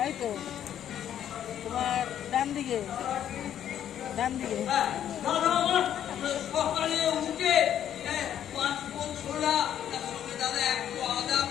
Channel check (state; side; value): quieter; right; 10.3 dB